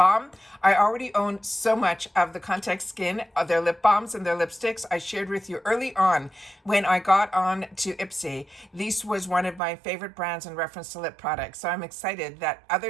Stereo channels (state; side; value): drops out; left; at 9.6 s